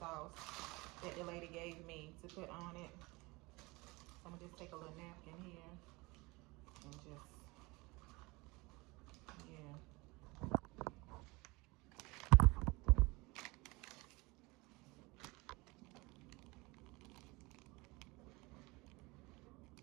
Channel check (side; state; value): left; quieter; 24.2 dB